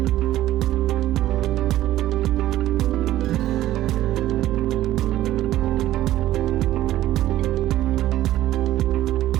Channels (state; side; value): quieter; left; 14.2 dB